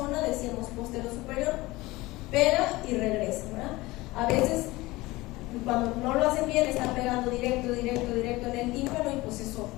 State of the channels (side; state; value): right; quieter; 20.3 dB